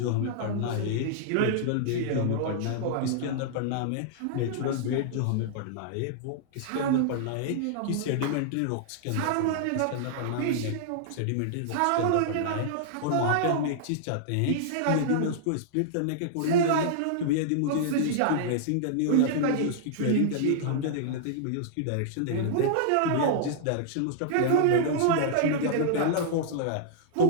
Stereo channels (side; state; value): both; different; correlation -0.01